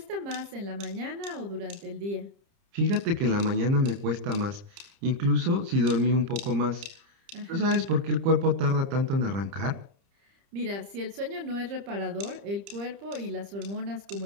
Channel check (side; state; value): left; late; 30 ms